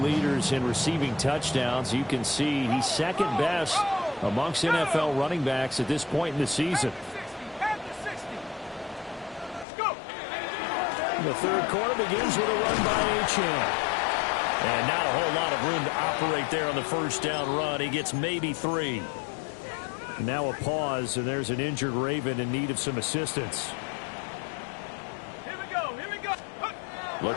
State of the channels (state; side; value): drops out; right; at 9.7 s